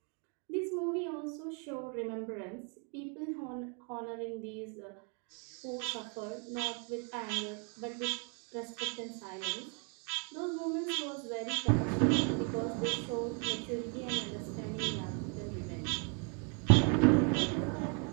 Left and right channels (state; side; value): quieter; left; 37.8 dB